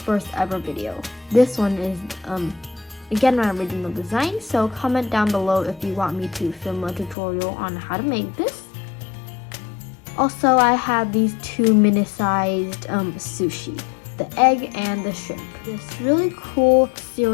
ever video. This one is again my original design, so comment down below if you want me to film a tutorial on how to make this. Also, I have these 2 mini-sized sushi, the egg and the shrimp. This really cool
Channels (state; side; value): drops out; right; at 7.2 s